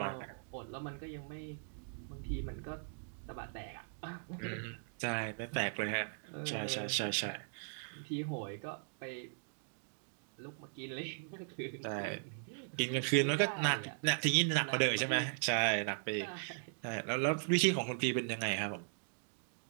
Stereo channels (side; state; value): left; silent; digital silence